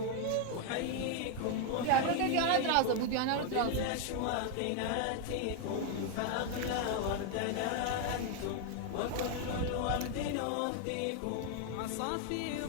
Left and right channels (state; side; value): different; both; correlation 0.00